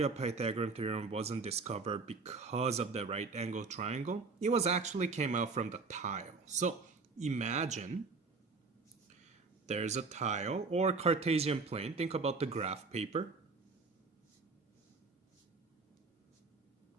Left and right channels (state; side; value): quieter; left; 4.2 dB